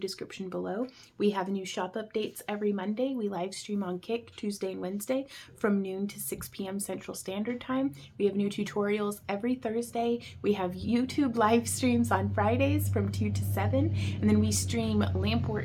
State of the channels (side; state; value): both; identical; correlation 1.00